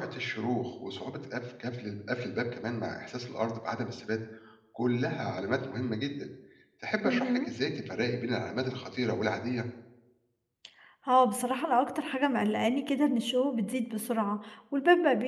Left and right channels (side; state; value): both; identical; correlation 1.00